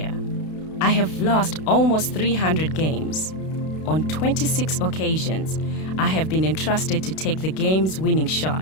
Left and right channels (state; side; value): late; right; 32 ms